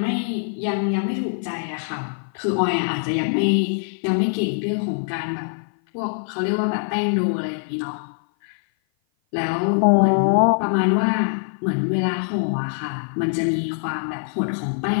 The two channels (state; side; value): silent; right; 55 dB below the other